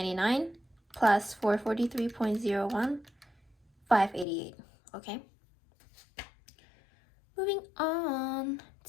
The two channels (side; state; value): right; drops out; at 4.2 s